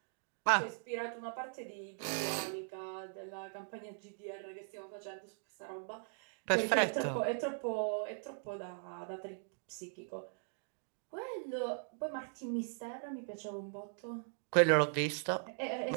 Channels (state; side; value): silent; left; digital silence